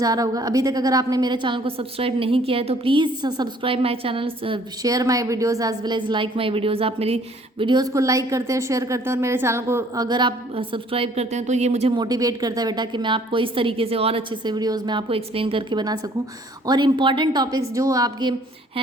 आ रहा होगा। अभी तक अगर आपने मेरे चैनल को सब्सक्राइब नहीं किया है तो please subscribe my channel, share my videos as well as like my videos. आप मेरी वीडियोस को लाइक करते हैं, शेयर करते हैं, और मेरे चैनल को अगर आप सब्सक्राइब करते हैं तो ये मुझे मोटिवेट करता है बेटा कि मैं आपको इस तरीके से और अच्छे से वीडियोज़ में आपको एक्सप्लेन करके बना सकूँ, और इंपॉर्टेंट टॉपिक्स जो आपके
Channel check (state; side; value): normal; both; correlation 0.58